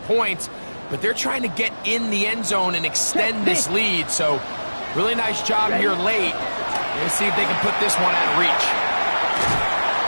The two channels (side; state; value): both; inverted; correlation -1.00